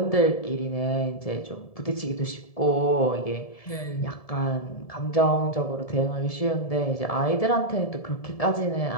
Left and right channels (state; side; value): late; right; 1.7 ms